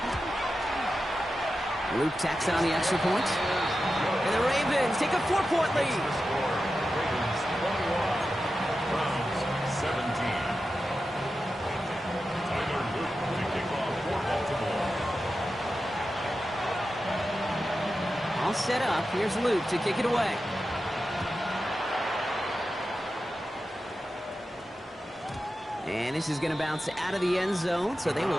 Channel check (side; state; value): both; normal; correlation 0.91